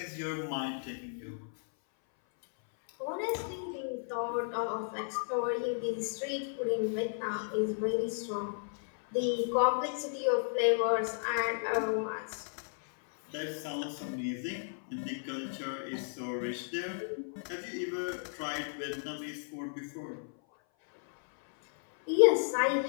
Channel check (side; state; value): right; silent; 55 dB below the other